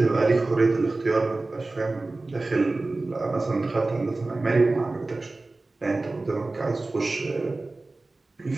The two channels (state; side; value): quieter; left; 3.2 dB